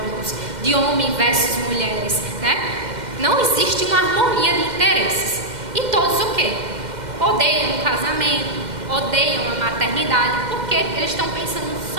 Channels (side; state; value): left; late; 2.1 ms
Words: de homem versus mulheres, né? Não existe uma harmonia de interesses. E todos o quê? Odeiam o casamento, odeiam a maternidade, porque eles estão pensando